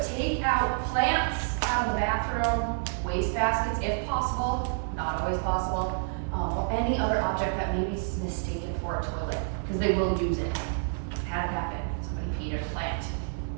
take out plants out of the bathroom, waste baskets if possible, not always possible, or any other object that may be mistaken for a toilet, because they will use it. Had it happen, somebody peed in a plant.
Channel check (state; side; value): silent; left; 59 dB below the other